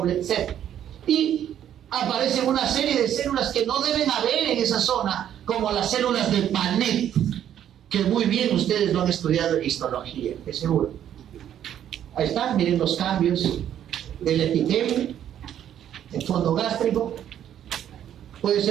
cell. Y aparecen una serie de células que no deben haber en esa zona, como las células de Panet, que muy bien ustedes lo han estudiado en histología, de seguro. Ahí están, miren los cambios del epitelio, el fondo gástrico, puede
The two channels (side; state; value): left; quieter; 10.4 dB